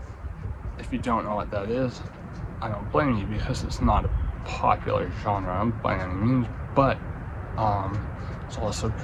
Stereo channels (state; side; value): identical; both; correlation 1.00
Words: if you don't know what that is, I don't blame you, because it's not a popular genre by any means, but it's also